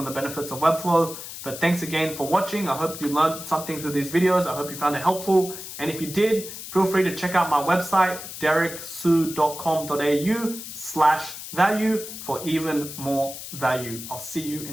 the benefits of Webflow. But thanks again for watching. I hope you learned something through these videos. I hope you found it helpful. And if you did, feel free to check out my website, dereksu.com.au/value for even more value. I'll see you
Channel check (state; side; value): noise; left; hiss, 10 dB below the sound